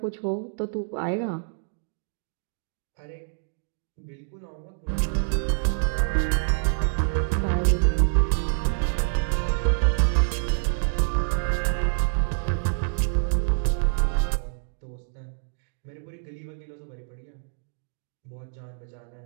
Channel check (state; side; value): silent; left; digital silence